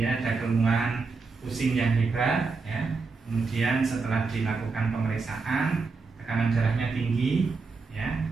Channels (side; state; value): left; quieter; 4.4 dB